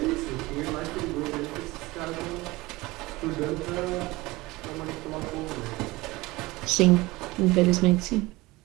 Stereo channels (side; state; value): left; quieter; 20.9 dB